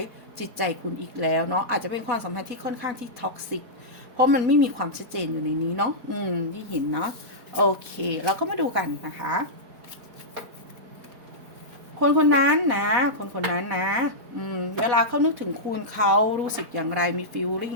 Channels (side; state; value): left; late; 4.1 ms